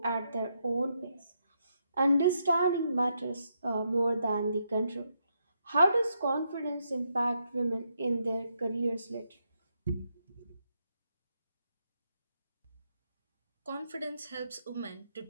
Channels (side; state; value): both; inverted; correlation -0.80